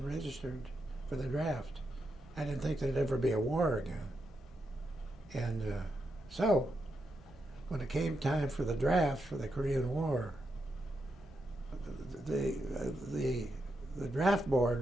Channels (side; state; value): both; normal; correlation 0.84